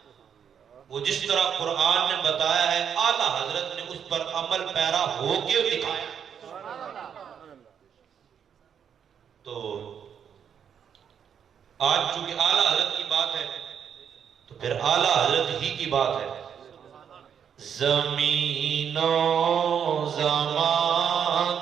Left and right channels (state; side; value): quieter; left; 8.0 dB